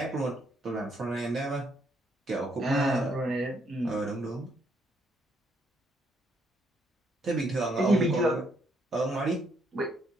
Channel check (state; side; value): normal; both; correlation 0.72